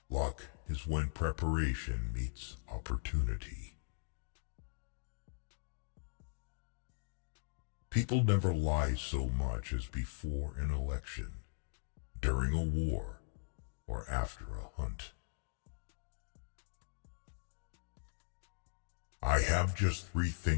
Luck is when preparation meets opportunity. People never lie so much as before an election, during a war, or after a hunt. I have just three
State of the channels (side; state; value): right; silent; digital silence